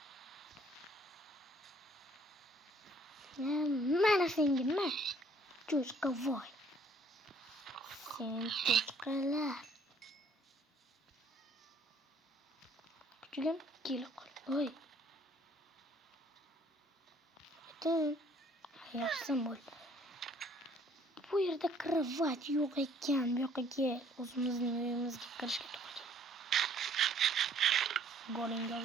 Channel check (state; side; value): normal; both; correlation 0.60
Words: Mana senga nima? Cho'chqa voy. Sen cho'chqalar. Kuchugim kelib qol. Voy. Yaxshi bo'ldi. Bu yerda kravat yo'q ekan. Bu yoqqa o'zimizning uyimizga kirishga to'g'ri. Golinga